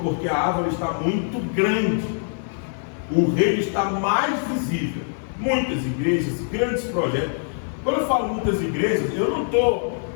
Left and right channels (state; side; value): silent; right; digital silence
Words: porque a árvore está muito grande. O reino está mais visível. Muitas igrejas, grandes projetos. Quando eu falo muitas igrejas, eu não estou